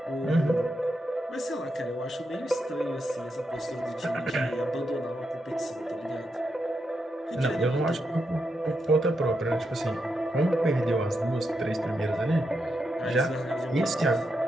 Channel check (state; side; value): normal; both; correlation 0.84